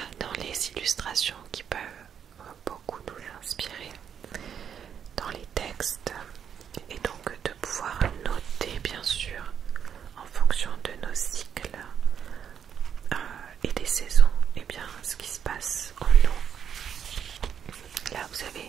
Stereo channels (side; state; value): left; quieter; 8.2 dB